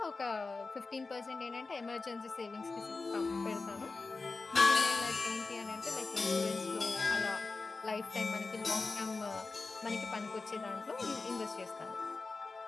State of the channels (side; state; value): right; quieter; 3.8 dB